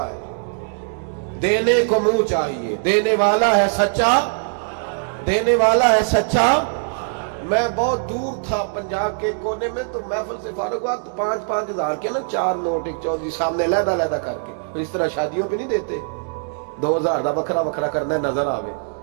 है? देने को मुंह चाहिए, देने वाला है सच्चा, देने वाला है सच्चा। मैं बहुत दूर था पंजाब के कोने में, तो महफिल से फारूक हुआ तो 5-5 हजार के ना 4 नोट एक चौधरी सामने लहदा लहदा करके, तो इस तरह शादियों पे नहीं देते। 2000 ਦਾ ਵੱਖਰਾ ਵੱਖਰਾ ਕਰਨਾ ਨਜ਼ਰ ਆਵੇ,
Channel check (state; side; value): silent; left; digital silence